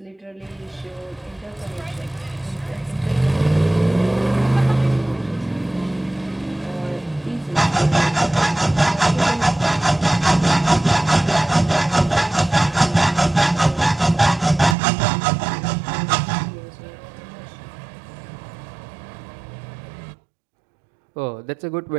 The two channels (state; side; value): drops out; left; at 14.8 s